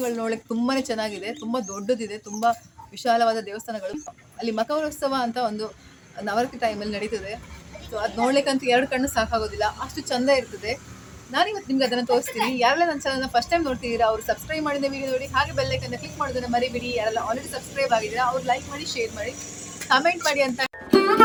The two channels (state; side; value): identical; both; correlation 1.00